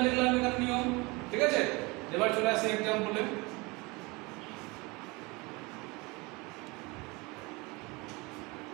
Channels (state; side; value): quieter; left; 25.5 dB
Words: লিখলাম এখানে নিয়ম, ঠিক আছে? এবার চলে আসি এক্সাম্পলে।